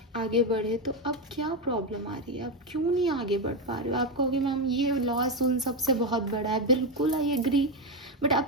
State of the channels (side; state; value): both; normal; correlation 0.09